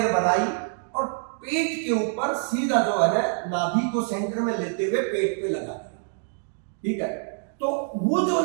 बनाई और पेट के ऊपर सीधा जो है ना नाभि को सेंटर में लेते हुए पेट पे लगा दिया, ठीक है। तो वो जो है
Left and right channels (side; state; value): left; silent; digital silence